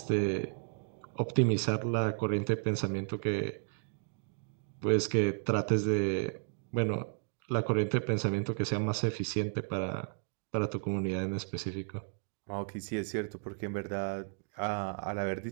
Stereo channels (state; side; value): silent; left; 55 dB below the other